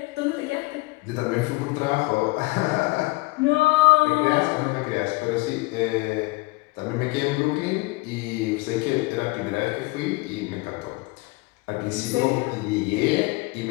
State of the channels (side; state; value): right; quieter; 24.2 dB